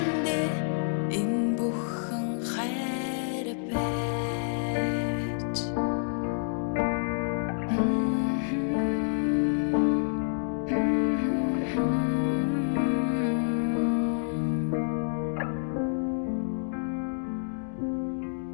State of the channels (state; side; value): silent; right; digital silence